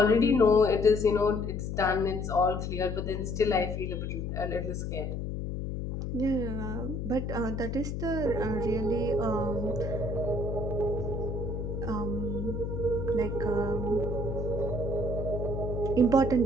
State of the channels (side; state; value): left; noise; hum, 4 dB below the sound